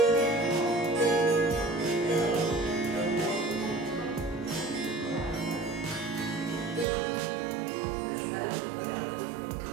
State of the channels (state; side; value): drops out; left; at 6.9 s